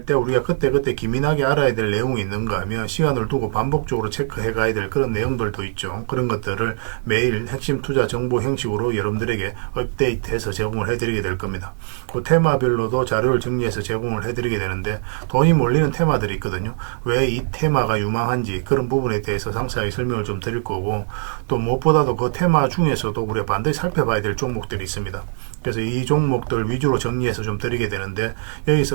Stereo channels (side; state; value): left; silent; 62 dB below the other